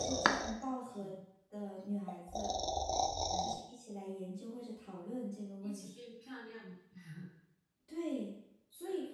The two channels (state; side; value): identical; both; correlation 1.00